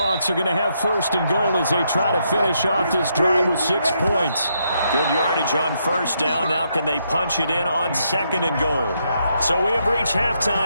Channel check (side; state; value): both; inverted; correlation -0.77